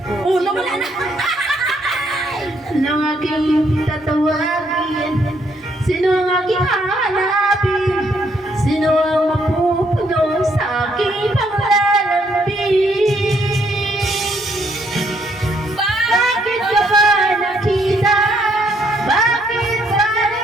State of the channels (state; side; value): normal; both; correlation 0.71